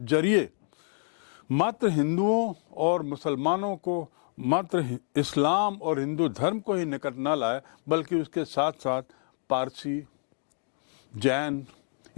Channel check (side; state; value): right; silent; digital silence